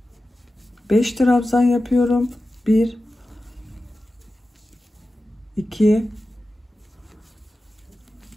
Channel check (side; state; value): both; normal; correlation 0.94